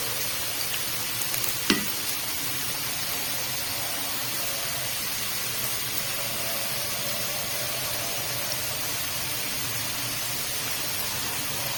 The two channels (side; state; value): right; noise; rumble, 17 dB below the sound